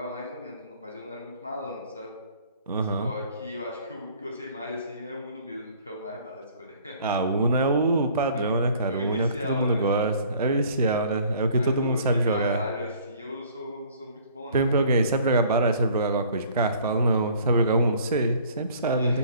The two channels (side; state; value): both; inverted; correlation -0.54